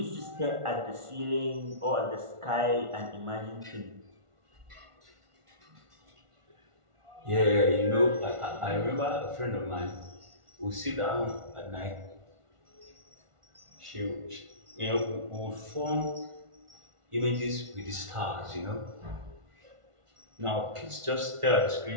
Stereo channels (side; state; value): left; late; 1.4 ms